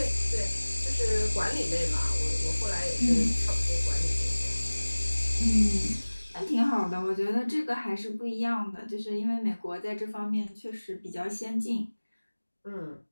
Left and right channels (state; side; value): inverted; both; correlation -1.00